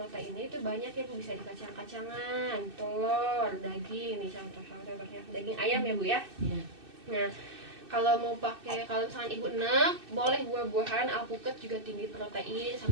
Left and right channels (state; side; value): late; left; 2.6 ms